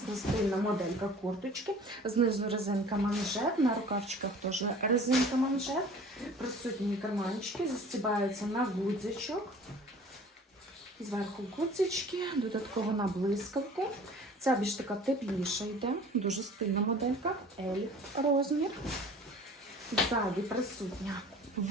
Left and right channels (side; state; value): both; normal; correlation 0.46